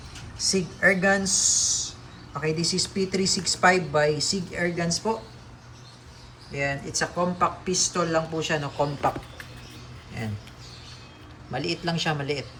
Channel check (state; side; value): identical; both; correlation 1.00